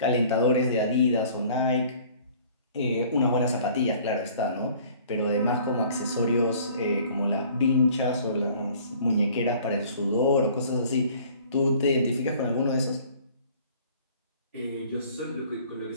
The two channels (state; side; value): inverted; both; correlation -0.52